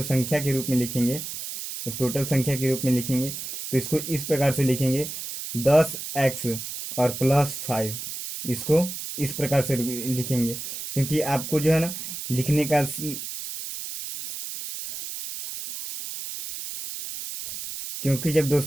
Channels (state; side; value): noise; right; hiss, 7 dB below the sound